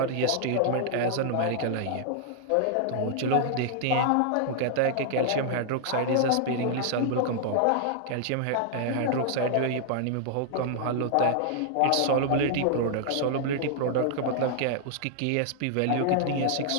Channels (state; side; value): different; both; correlation -0.01